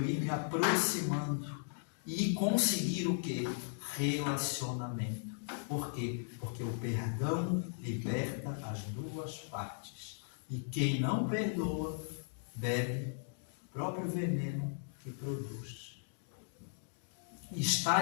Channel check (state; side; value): silent; right; digital silence